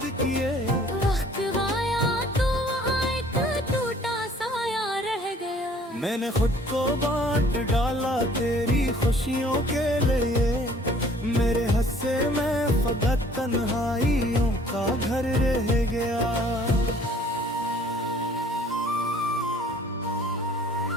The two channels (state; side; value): normal; both; correlation 0.55